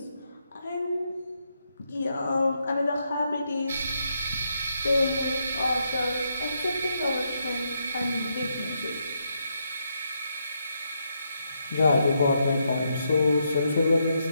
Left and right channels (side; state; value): both; inverted; correlation -0.79